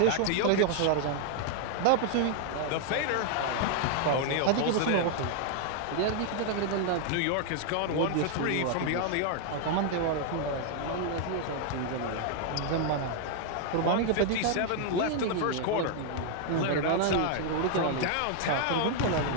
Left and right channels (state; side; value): different; both; correlation 0.00